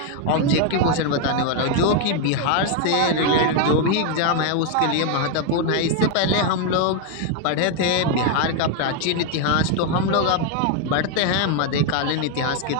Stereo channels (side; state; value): both; different; correlation 0.01